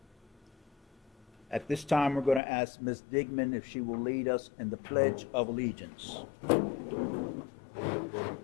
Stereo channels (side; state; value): right; drops out; at 2.4 s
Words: At this time, we're going to ask Ms. Digman if she will lead us in the Pledge of Allegiance.